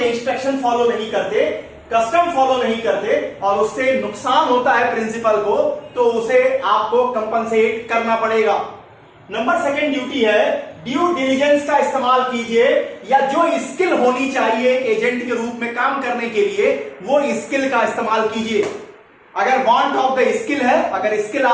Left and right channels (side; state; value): both; identical; correlation 1.00